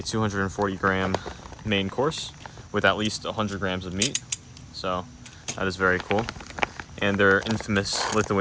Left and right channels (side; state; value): both; identical; correlation 1.00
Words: 240 gram main course with at least 100 grams of meat. So that is very cool. And they're infamous